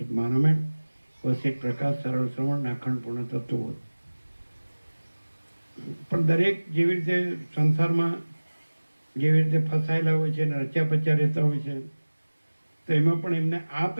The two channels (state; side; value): inverted; both; correlation -1.00